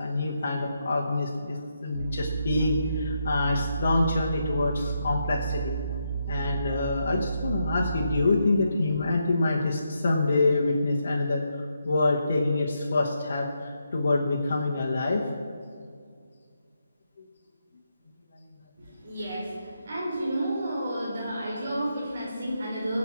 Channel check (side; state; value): both; inverted; correlation -0.81